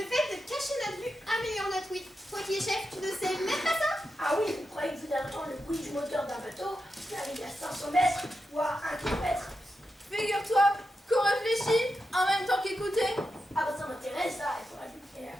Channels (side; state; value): both; normal; correlation 0.88